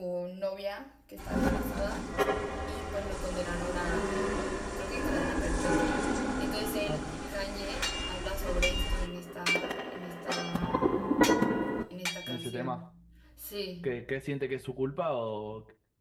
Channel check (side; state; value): both; identical; correlation 1.00